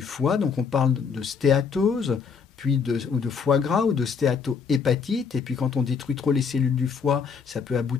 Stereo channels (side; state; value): right; quieter; 6.0 dB